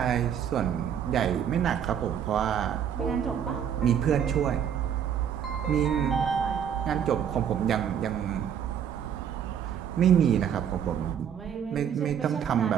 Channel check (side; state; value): left; quieter; 8.6 dB